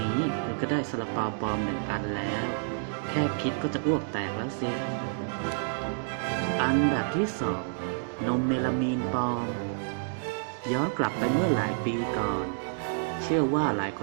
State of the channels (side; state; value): left; silent; digital silence